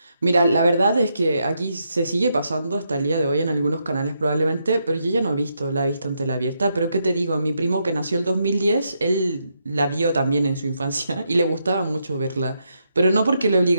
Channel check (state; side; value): inverted; both; correlation -0.80